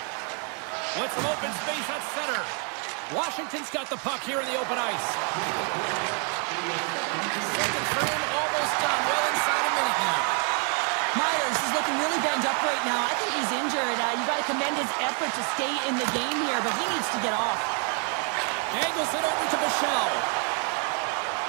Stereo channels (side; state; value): left; quieter; 39.8 dB